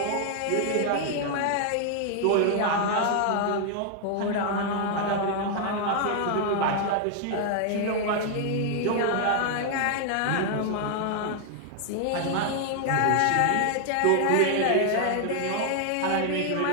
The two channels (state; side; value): different; both; correlation 0.00